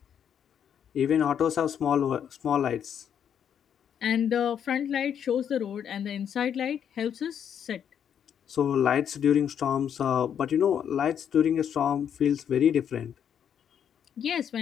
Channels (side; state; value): right; quieter; 8.6 dB